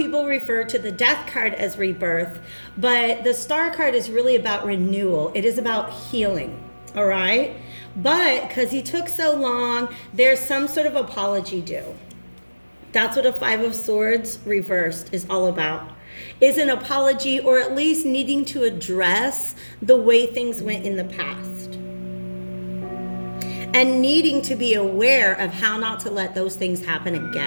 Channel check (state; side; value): inverted; both; correlation -1.00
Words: refer to the death card as rebirth, but the star card is really about renewal. It is about healing. All right? But because he took so long, there's some sort of apology due. That's what a 5 of Swords reversed is all about. Is an apology, or at least needing to address the way things went in the past. And needing to be aware of how not to let those things happen